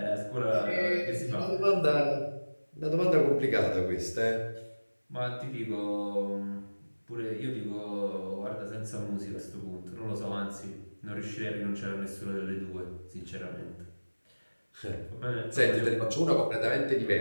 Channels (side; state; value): both; inverted; correlation -1.00